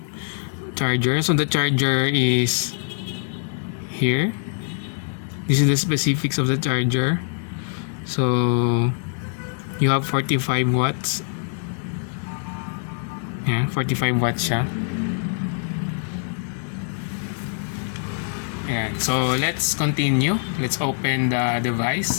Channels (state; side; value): silent; right; 63 dB below the other